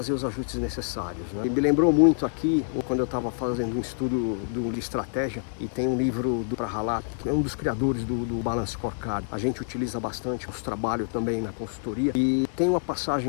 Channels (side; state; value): right; silent; digital silence